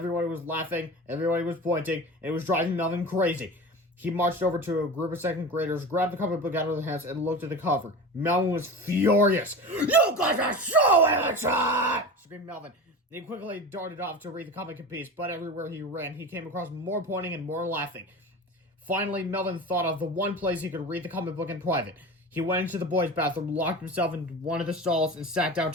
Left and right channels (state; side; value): normal; both; correlation 0.31